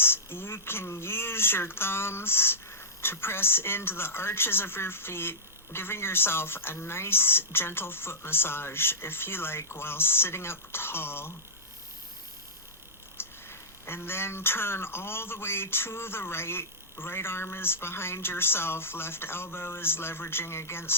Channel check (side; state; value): both; normal; correlation -0.15